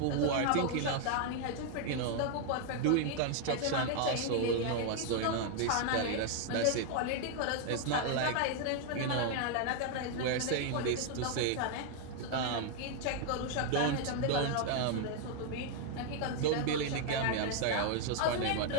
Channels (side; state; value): both; different; correlation 0.00